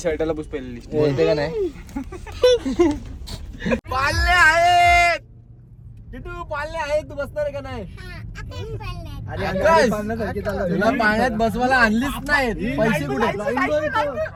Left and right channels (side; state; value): both; identical; correlation 1.00